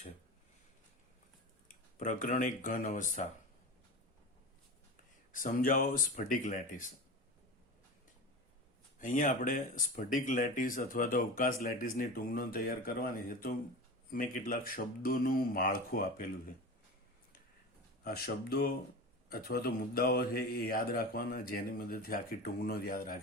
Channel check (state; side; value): normal; both; correlation 0.29